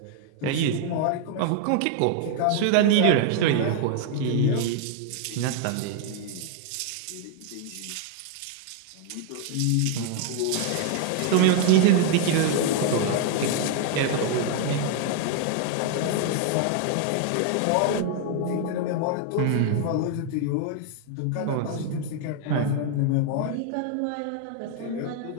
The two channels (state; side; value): different; both; correlation 0.00